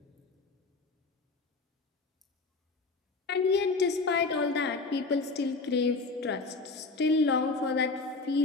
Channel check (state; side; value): quieter; right; 3.8 dB